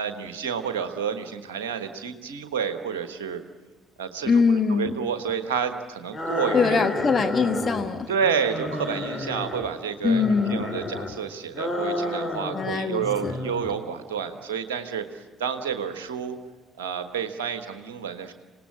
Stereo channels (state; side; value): normal; both; correlation 0.36